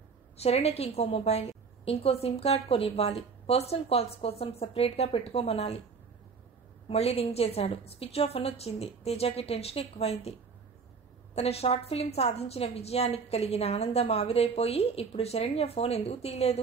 శరణ్యకి ఇంకో మొబైల్, ఇంకో సిమ్ కార్డ్ కొని ఇవ్వాలి. పర్సనల్ కాల్స్ కోసం సపరేట్గా పెట్టుకోమనాలి. మళ్ళీ రింగ్ చేశాడు. స్విచ్ ఆఫ్ అని వచ్చింది. తేజకి టెన్షన్ ఎక్కువైంది. తన షార్ట్ ఫిల్మ్ సాధించిన విజయానికి కలిగిన ఆనందం ఆవిరైపోయి ఇప్పుడు శరణ్య ఫోన్ ఎందుకు తీయలేదు,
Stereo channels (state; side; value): quieter; left; 5.2 dB